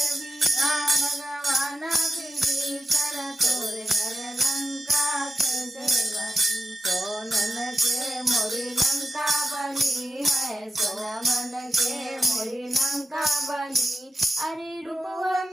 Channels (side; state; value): both; normal; correlation 0.90